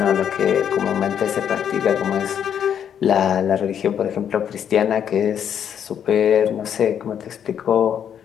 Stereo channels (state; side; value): quieter; right; 8.7 dB